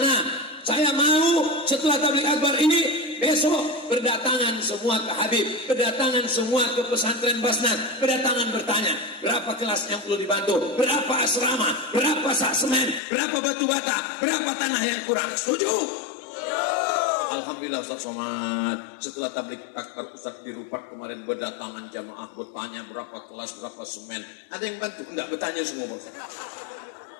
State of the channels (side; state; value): right; drops out; at 13.0 s